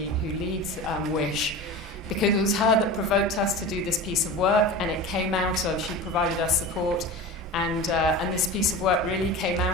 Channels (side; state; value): both; normal; correlation 0.31